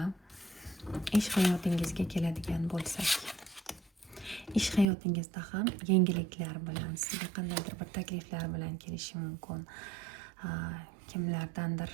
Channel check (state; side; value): drops out; left; at 4.9 s